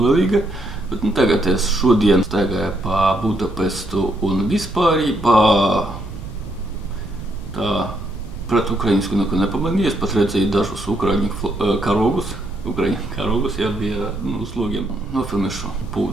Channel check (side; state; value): right; noise; rumble, 12 dB below the sound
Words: Bet nu, tagad es šodien staigāju pa Budapestu un vispārībā tā pret ukrainisku neko nepamanīju. Es pat redzēju dažus ukraiņu karogus. Jā, bija uz logiem. Nofilmēšu